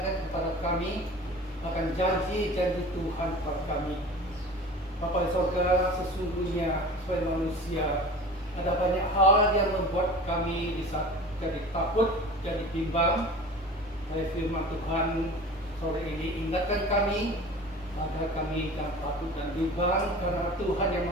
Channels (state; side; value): normal; both; correlation 0.39